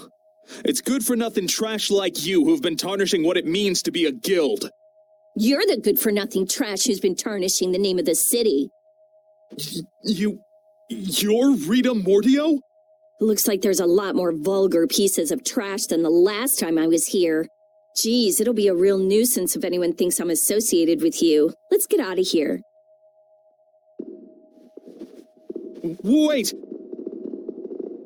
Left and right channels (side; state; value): both; identical; correlation 1.00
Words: It's good-for-nothing trash like you who've been tarnishing what it means to be a guild. You're the good-for-nothing trash who's been tarnishing the name of the city. You're Rita Mordio? Looks like there's a lot more vulgar pieces of trash than the last time I was here. Geez, it'll be a real nuisance if anyone thinks I'm associated with you. Let's get out of here. Wait!